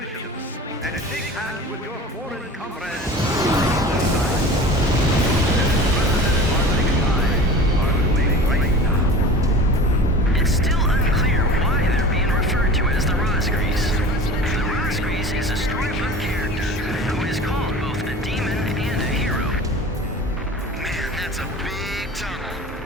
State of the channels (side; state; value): both; normal; correlation 0.38